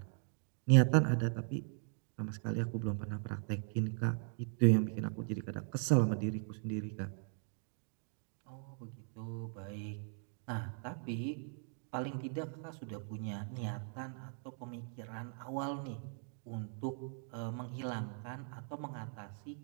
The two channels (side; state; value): left; silent; 52 dB below the other